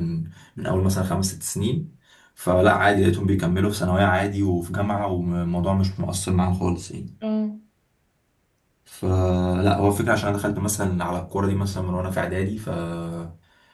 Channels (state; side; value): identical; both; correlation 1.00